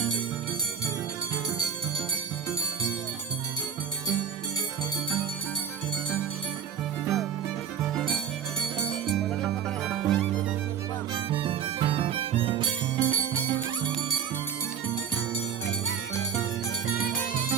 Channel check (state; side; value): quieter; left; 7.8 dB